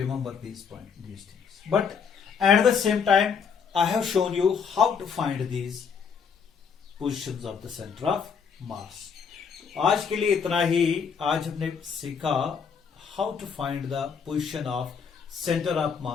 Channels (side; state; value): right; quieter; 6.4 dB